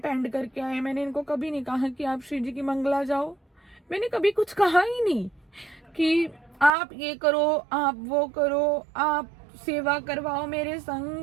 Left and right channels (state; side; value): drops out; left; at 6.7 s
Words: करके आए, मैंने इनको कभी नहीं कहा कि आप श्री जी की मंगला जाओ, मैंने कभी कुछ कहा ही नहीं कि आप ये करो, आप वो करो, आप सेवा करवाओ मेरे